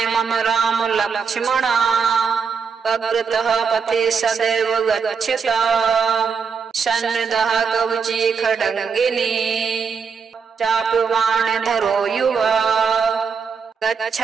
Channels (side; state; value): left; quieter; 5.8 dB